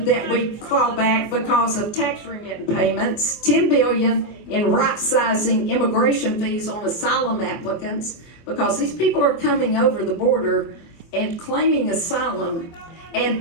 that we claw back because of tax remittance payments, $10 billion in right-sizing immigration fees on asylum applicants, because these people are coming over the border and claiming asylum, and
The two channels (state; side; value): late; right; 24 ms